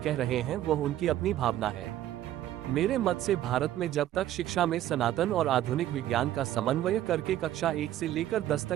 कह रहे हैं वह उनकी अपनी भावना है। मेरे मत से भारत में जब तक शिक्षा में सनातन और आधुनिक विज्ञान का समन्वय करके कक्षा 1 से लेकर 10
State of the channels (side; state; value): left; quieter; 12.9 dB